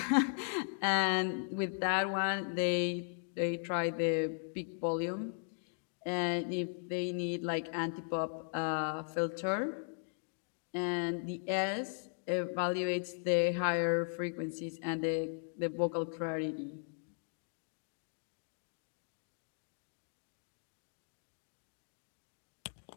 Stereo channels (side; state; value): right; silent; digital silence